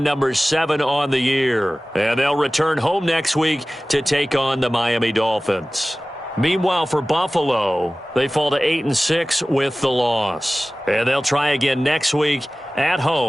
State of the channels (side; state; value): both; normal; correlation 0.97